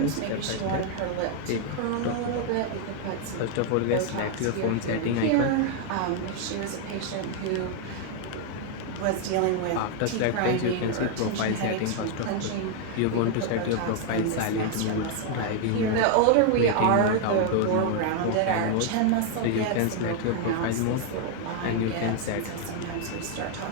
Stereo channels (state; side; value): different; both; correlation 0.00